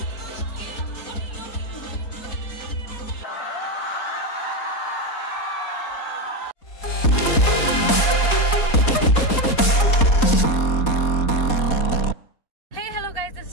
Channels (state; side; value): late; right; 4.2 ms